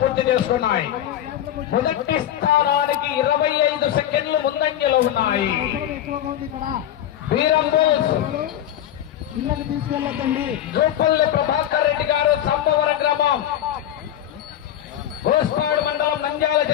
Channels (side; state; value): right; quieter; 11.4 dB